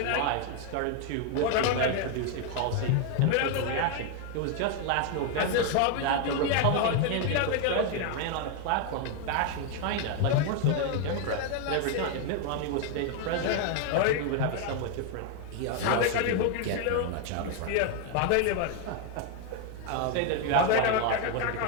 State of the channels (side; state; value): both; different; correlation 0.01